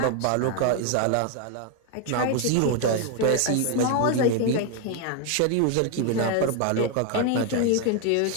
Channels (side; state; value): both; different; correlation 0.01